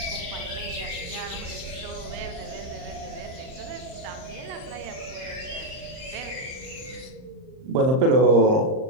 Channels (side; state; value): left; late; 38 ms